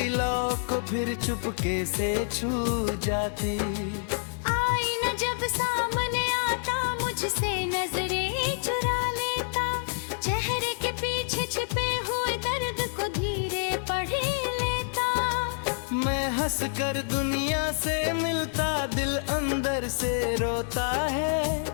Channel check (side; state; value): right; silent; digital silence